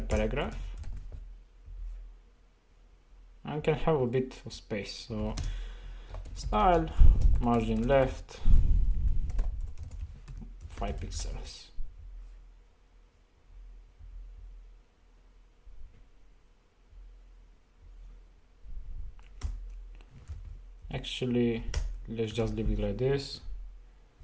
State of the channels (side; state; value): both; identical; correlation 1.00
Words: paragraph and can have a bit of space. So style, margin left, 5 pixels. Actually, let's just leave it like this.